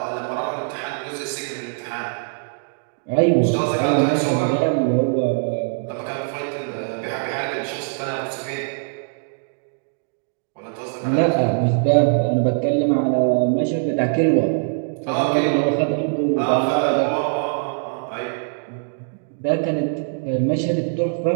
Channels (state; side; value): silent; left; digital silence